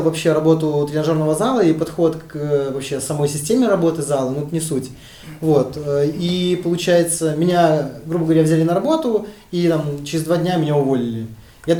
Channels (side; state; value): both; identical; correlation 1.00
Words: вообще работу тренажерного зала и подход к вообще самой системе работы зала, но это не суть. Вот. И получается, меня, грубо говоря, взяли на работу, и там через 2 дня меня уволили. Я